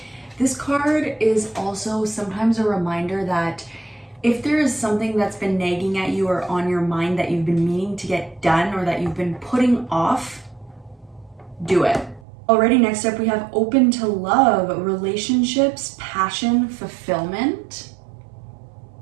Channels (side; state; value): left; drops out; at 12.2 s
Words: This card is also sometimes a reminder that if there is something that's been nagging at you or on your mind that you've been meaning to get done or that you've been putting off, do it. Alrighty, next up we have open to love, relationships, passion, fulfillment,